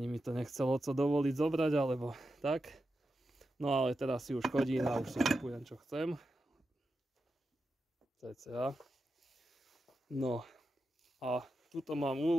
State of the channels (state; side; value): normal; both; correlation 0.89